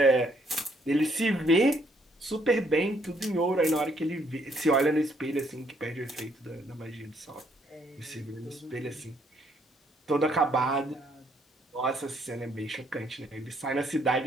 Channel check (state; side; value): normal; both; correlation 0.69